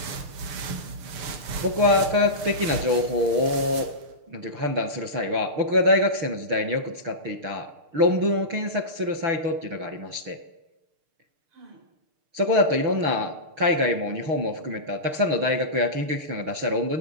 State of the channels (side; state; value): left; late; 6.6 ms